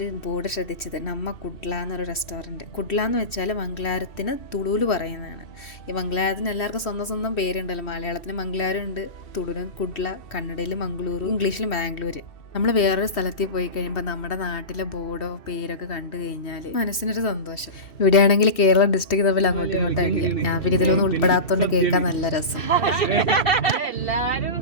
ബോർഡ് ശ്രദ്ധിച്ചത്. നമ്മ കുഡ്ല എന്നൊരു റെസ്റ്റോറൻറ്റ്. കുഡ്ല എന്ന് വെച്ചാൽ മംഗലാരത്തിന് തുളുല് പറയുന്നതാണ്. ഈ മംഗലാരത്തിന് എല്ലാവർക്കും സ്വന്തം സ്വന്തം പേരുണ്ടല്ലോ. മലയാളത്തിന് മംഗലാരം ഉണ്ട്, തുളുന് കുഡ്ല, കന്നഡയിൽ മംഗളൂരു, ഇംഗ്ലീഷിൽ ബാംഗ്ലൂർ. നമ്മൾ വേറൊരു സ്ഥലത്തിൽ പോയി കഴിയുമ്പോൾ നമ്മുടെ നാട്ടിലെ ബോർഡോ പേരൊക്കെ കണ്ടു കഴിഞ്ഞാൽ മനസ്സിനൊരു സന്തോഷം. ഇവിടെയാണെങ്കിൽ കേരള ഡിസ്ട്രിക്ട് തമ്മിൽ അങ്ങോട്ടും ഇങ്ങോട്ടും അടിക്കാം. ഞാൻ പിന്നെ ഇതിലൊന്നും ഉൾപ്പെടാത്തോണ്ട് കേൾക്കാൻ നല്ല രസം. എല്ലാരും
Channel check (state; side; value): late; right; 2.7 ms